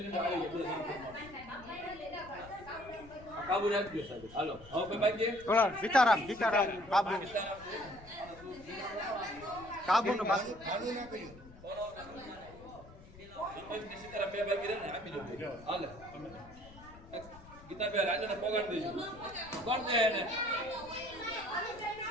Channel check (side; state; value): left; noise; rumble, 19 dB below the sound